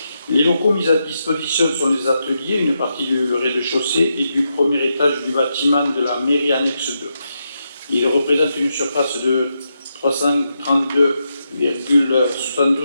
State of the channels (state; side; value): inverted; both; correlation -0.84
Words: Les locaux mis à disposition sont les ateliers, une partie du rez-de-chaussée et du premier étage du bâtiment de la mairie annexe 2. Il représente une surface de